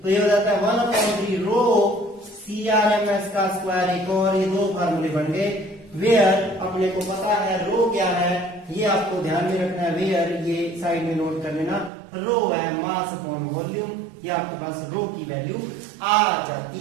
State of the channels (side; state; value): left; drops out; at 11.9 s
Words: तो ये हो जाता है 1/3 रो CRMS का स्क्वायर। एक और ये दो फार्मूले बन गए। वेयर अपने को पता है रो क्या है, ये आपको ध्यान में रखना है। वेयर ये साइड में नोट कर लेना, रो है मास अपॉन वॉल्यूम, ये आपके पास रो की वैल्यू आ